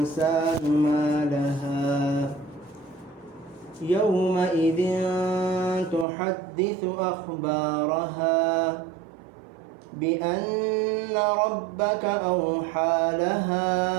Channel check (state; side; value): drops out; left; at 6.1 s